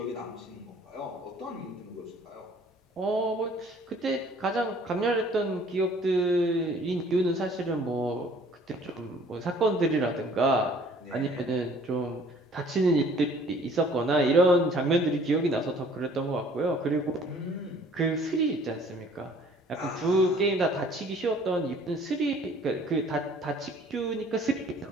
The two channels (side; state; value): both; normal; correlation 0.55